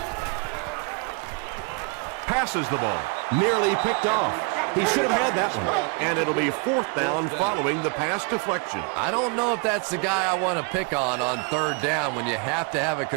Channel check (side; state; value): left; quieter; 30.4 dB